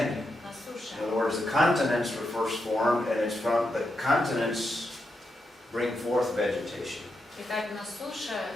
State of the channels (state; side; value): normal; both; correlation 0.84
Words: На суше. In other words, the continents were first formed, and it's from the continents bring forth vegetation. Итак, на суше,